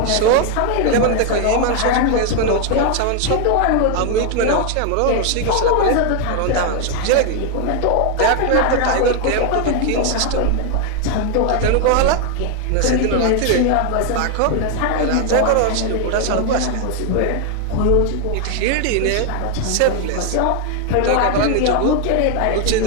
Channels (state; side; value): different; both; correlation 0.00